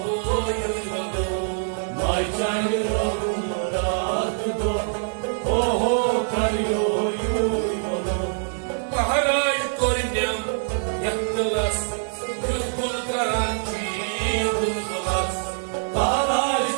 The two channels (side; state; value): left; silent; digital silence